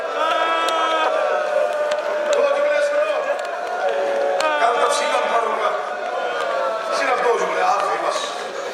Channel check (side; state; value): both; identical; correlation 1.00